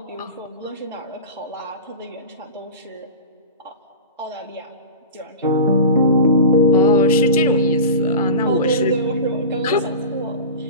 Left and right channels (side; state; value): both; inverted; correlation -0.31